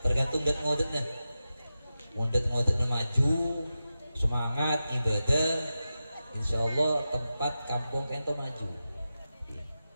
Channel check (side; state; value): both; inverted; correlation -0.92